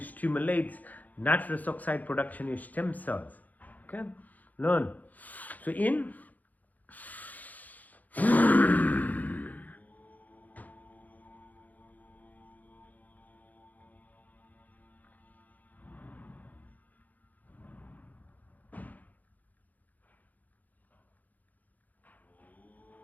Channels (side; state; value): right; late; 0.080 ms